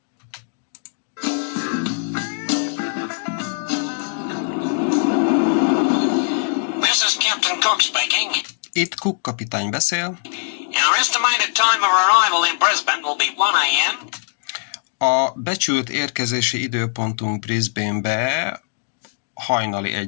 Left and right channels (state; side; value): silent; right; digital silence